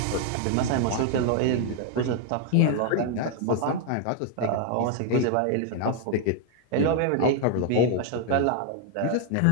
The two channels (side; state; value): both; different; correlation 0.00